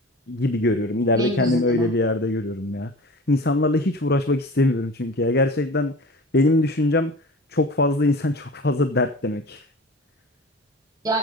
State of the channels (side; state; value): both; normal; correlation 0.37